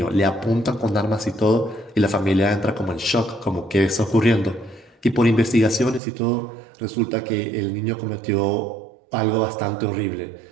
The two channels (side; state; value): left; drops out; at 6.0 s